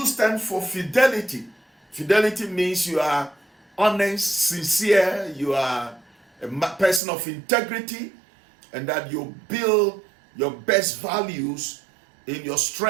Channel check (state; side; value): drops out; left; at 7.0 s